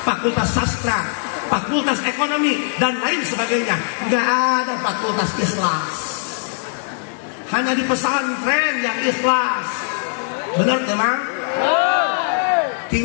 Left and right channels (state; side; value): silent; right; 66 dB below the other